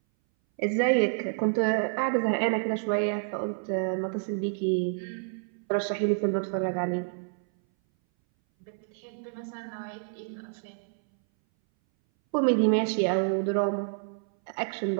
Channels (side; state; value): left; silent; 59 dB below the other